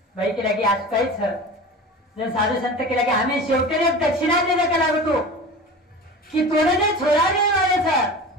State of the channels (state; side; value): normal; both; correlation 0.34